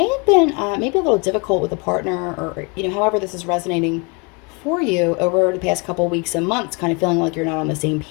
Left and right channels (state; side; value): quieter; right; 31.6 dB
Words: have been maybe a little difficult with a partner, or however this is resonating for you over the past couple weeks and months, kind of feeling like you're not on the same